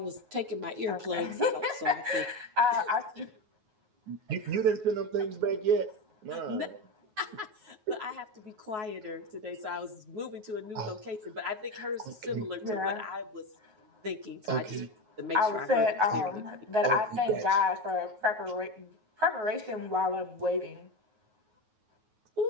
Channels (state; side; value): late; left; 9.4 ms